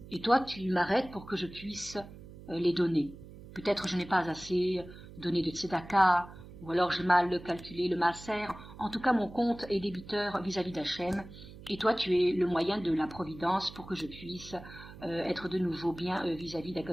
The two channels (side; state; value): right; noise; hum, 16 dB below the sound